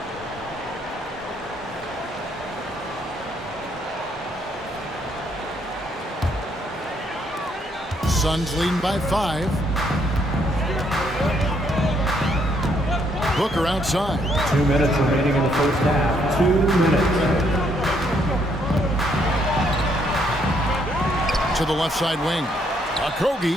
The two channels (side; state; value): both; normal; correlation 0.71